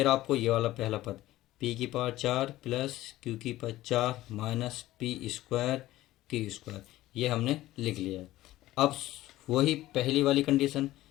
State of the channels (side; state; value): right; quieter; 16.0 dB